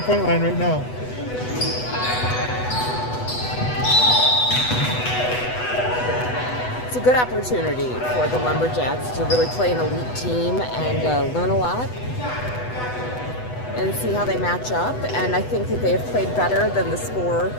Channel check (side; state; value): right; late; 8.1 ms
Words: line right now. It's a good opportunity for the Lumberjacks to really play an elite team and learn a lot and see how they match up. And I think that they have played better than the score